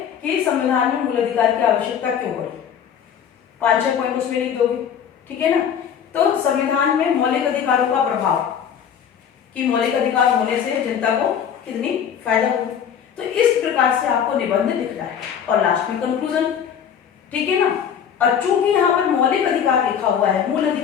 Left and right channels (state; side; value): quieter; right; 8.2 dB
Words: कि संविधान में मूल अधिकार की आवश्यकता क्यों पड़ी, 5-6 पॉइंट उसमें लिख दोगे, ठीक है ना। तो संविधान में मौलिक अधिकारों का प्रभाव, कि मौलिक अधिकार होने से जनता को कितनी फायदा होगी, तो इस प्रकार से आपको निबंध लिखना है। और लास्ट में कंक्लूजन, ठीक है ना। और चूंकि यहाँ पर मौलिक अधिकार लिखा हुआ है मूल